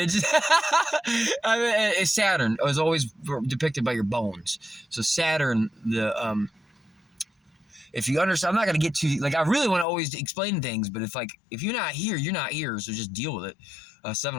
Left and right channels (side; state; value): right; drops out; at 9.9 s